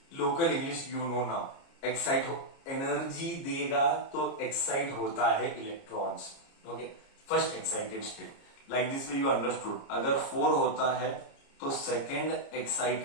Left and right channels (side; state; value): right; late; 29 ms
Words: local English you know now. Excite हो, एनर्जी देगा तो एक्साइट होता है electrons, okay, first excited state. Like this you understood. अगर 4 होता है तो सेकेंड